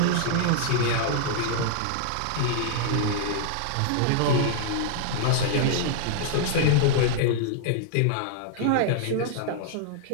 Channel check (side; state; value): both; different; correlation -0.01